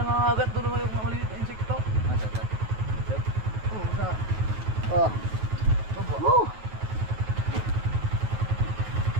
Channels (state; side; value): late; left; 9.3 ms